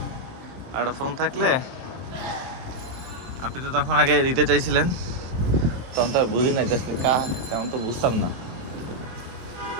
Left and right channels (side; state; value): left; late; 23 ms